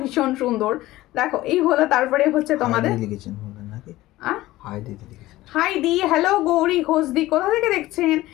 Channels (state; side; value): quieter; right; 17.0 dB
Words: ভীষণ সুন্দর। দেখো এই হলো, তারপরে হচ্ছে তোমাদের হাই দি, হ্যালো গৌরী ঘোষদি, কোথা থেকে দেখছেন?